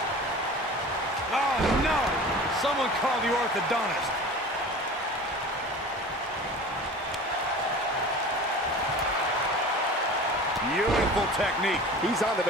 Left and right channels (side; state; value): both; normal; correlation 0.38